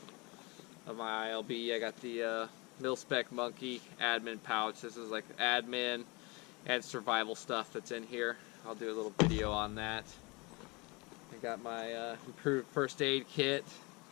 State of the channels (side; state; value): right; quieter; 26.8 dB